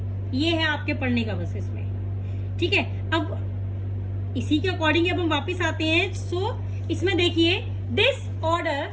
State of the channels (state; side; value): identical; both; correlation 1.00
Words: ये है आपके पढ़ने का बस इसमें, ठीक है। अब इसी के अकॉर्डिंग अब हम वापस आते हैं। सो इसमें देखिए, this order